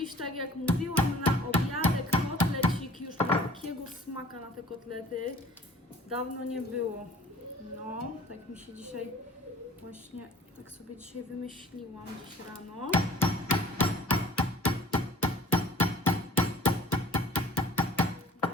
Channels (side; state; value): both; normal; correlation 0.49